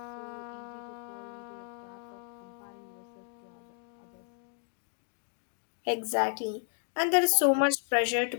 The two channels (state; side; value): silent; right; 56 dB below the other